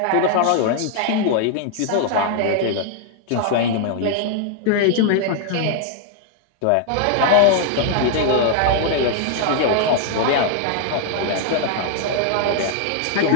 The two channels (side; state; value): both; different; correlation 0.00